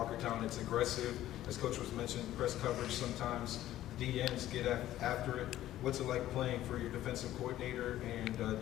It's aggressive. As Coach was mentioning, press coverage sometimes. DNs get after it. What's it like playing for your defensive coordinator? And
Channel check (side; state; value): right; quieter; 13.6 dB